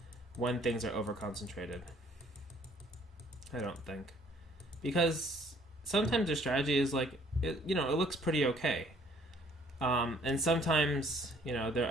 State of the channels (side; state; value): both; normal; correlation 0.60